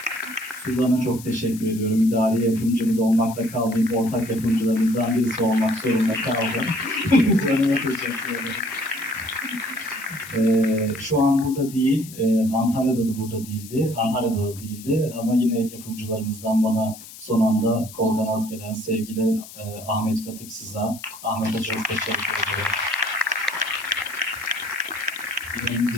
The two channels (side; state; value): left; noise; hiss, 16 dB below the sound